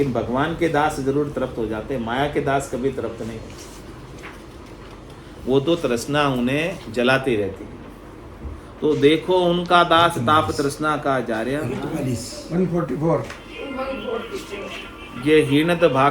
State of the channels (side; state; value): both; identical; correlation 1.00